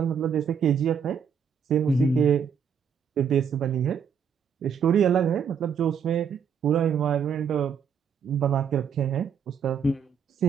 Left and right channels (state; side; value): quieter; left; 7.0 dB